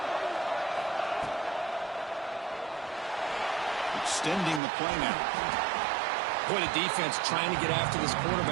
extending the play now. Boy, the defense trying to get after this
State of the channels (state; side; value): drops out; left; at 4.6 s